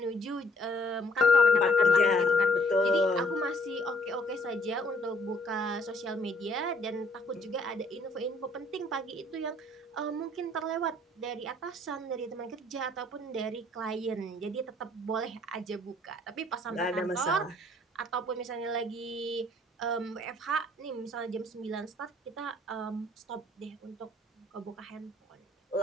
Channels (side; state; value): both; normal; correlation 0.63